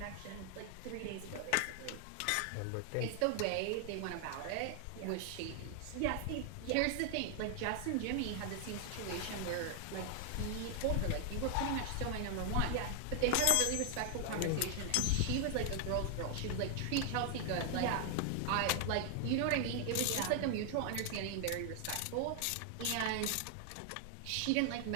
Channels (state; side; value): different; both; correlation 0.00